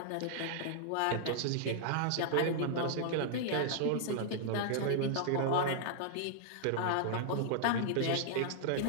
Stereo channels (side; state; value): both; different; correlation -0.01